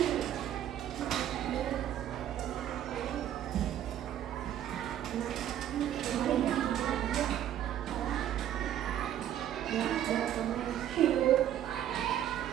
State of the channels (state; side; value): quieter; left; 11.1 dB